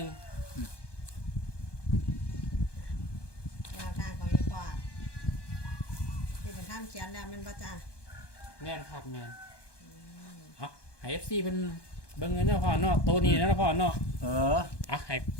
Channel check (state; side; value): late; right; 1.2 ms